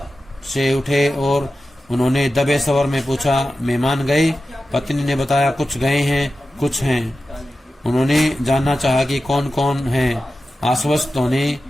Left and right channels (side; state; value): both; normal; correlation 0.93